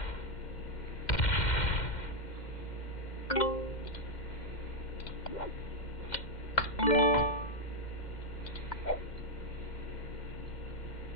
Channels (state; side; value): late; right; 2.1 ms